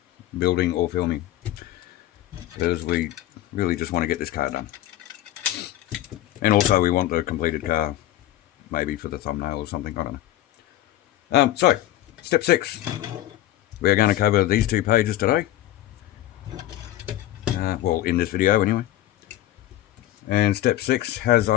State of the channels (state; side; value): quieter; right; 14.0 dB